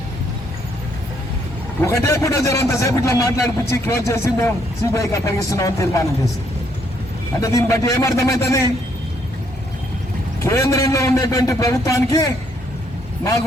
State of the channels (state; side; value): normal; both; correlation 0.71